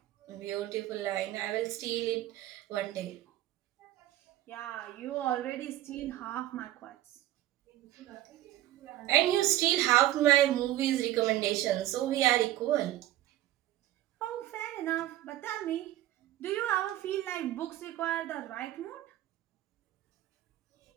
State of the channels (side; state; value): left; quieter; 14.5 dB